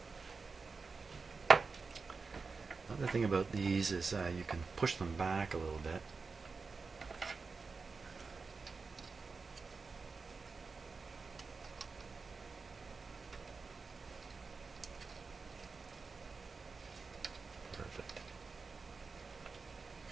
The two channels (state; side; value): quieter; left; 4.5 dB